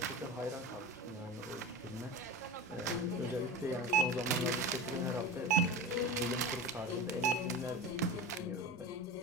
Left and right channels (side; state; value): both; normal; correlation 0.29